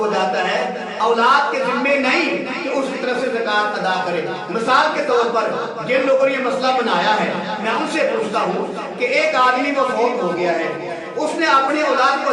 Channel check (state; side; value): identical; both; correlation 1.00